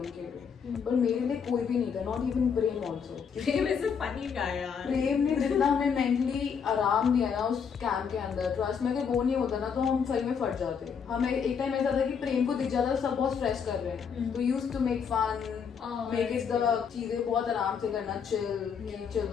लिए, पर मेरे लिए कोई भी नहीं था, not even Prem also. Prem is a funny guy यार. प्रेम ने जितना हमें मेंटली आराम दिया ना उस कैंप के अंदर, ट्रस्ट में अगर वो नहीं होता ना, तो हम सही में फट जाते. हमें एक टाइम ऐसा था कि प्रेम को दिख जाता, सब बहुत स्ट्रेस कर रहे हैं, तो used to make fun, make it the चीजें बहुत आराम से करना, चिल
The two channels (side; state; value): right; quieter; 6.7 dB